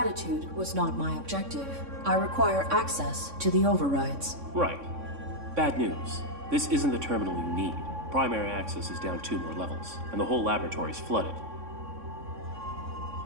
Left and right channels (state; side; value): late; left; 3.6 ms